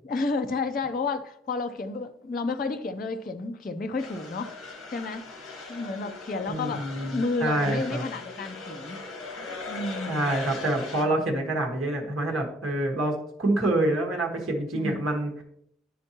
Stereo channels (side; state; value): both; normal; correlation 0.58